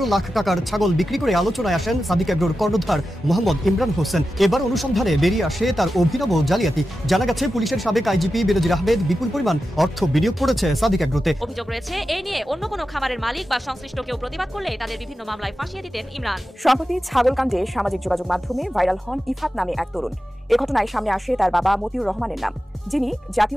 লাখ টাকার ছাগল বিক্রি করে আলোচনায় আসেন সাদেক এগ্রোর কর্ণধার মোহাম্মদ ইমরান হোসেন। এবার অনুসন্ধানে বেরিয়ে আসে তার অভিনব জালিয়াতি। জানা গেছে পুলিশের সাবেক আইজিপি বেনজির আহমেদ বিপুল পরিমাণ অর্থ বিনিয়োগ করেছে সাদেক এগ্রোতে। অভিযোগ রয়েছে এই নিয়ে অন্য কোনো খামারের মালিক বা সংশ্লিষ্ট কেউ প্রতিবাদ করলে তাদের বিভিন্ন মামলায় ফাঁসিয়ে দিতেন ইমরান। সম্প্রতি ছাগল কাণ্ডে সামাজিক যোগাযোগ মাধ্যমে ভাইরাল হন ইফাত নামে এক তরুণ। এ ঘটনায় সামনে আসে তার বাবা মতিউর রহমানের নাম, যিনি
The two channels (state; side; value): normal; both; correlation 0.92